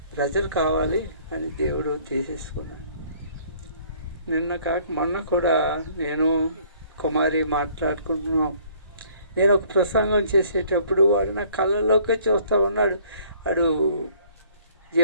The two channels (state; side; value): inverted; both; correlation -0.58